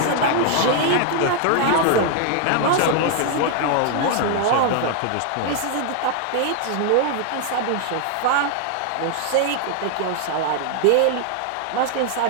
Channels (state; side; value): different; both; correlation 0.00